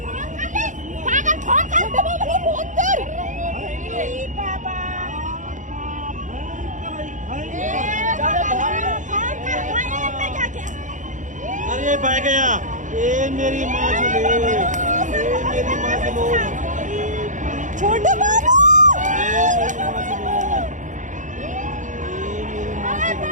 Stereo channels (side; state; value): left; late; 0.36 ms